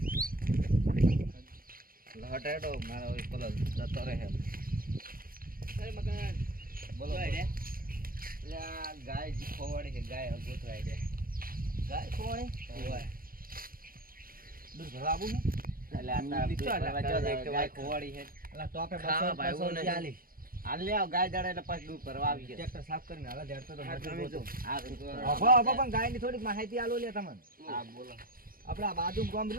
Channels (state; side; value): late; left; 0.42 ms